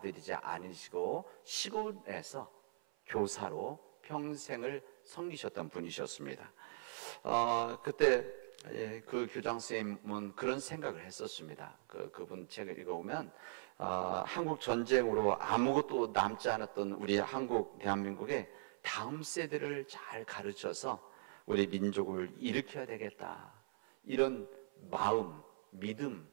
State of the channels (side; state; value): left; silent; 50 dB below the other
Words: 않으시고 시골에서 교사로 평생을 섬기셨던 분이셨습니다. 그때 그 교장 선생님은 그런 생각을 했었습니다. 그분 책을 읽어보면 한국 전쟁으로 아무것도 남지 않았던 우리 대한민국의 다음 세대를 잘 가르쳐서 우리 민족을 일으켜야 되겠다 이런 마음, 믿음